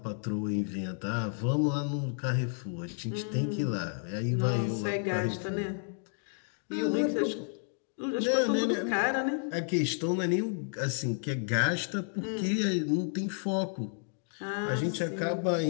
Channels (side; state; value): right; silent; 57 dB below the other